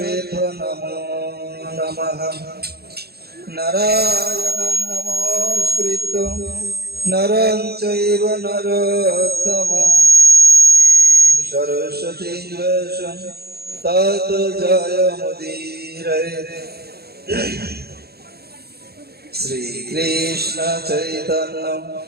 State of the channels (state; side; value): late; left; 0.46 ms